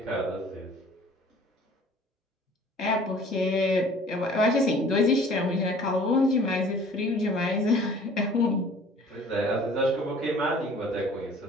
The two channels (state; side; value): normal; both; correlation 0.50